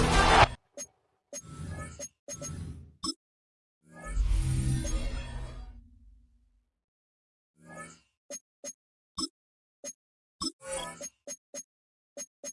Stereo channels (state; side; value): identical; both; correlation 1.00